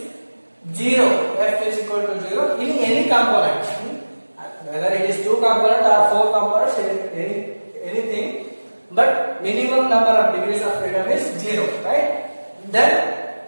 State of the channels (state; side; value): inverted; both; correlation -1.00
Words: 0. F is equal to 0 in any component. Whether it is two component or four components, anything. But minimum number of degrees of freedom is 0, right? Then